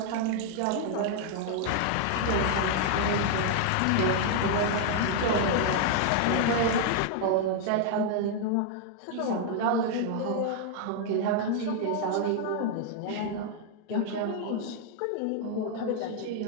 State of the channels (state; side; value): different; both; correlation 0.00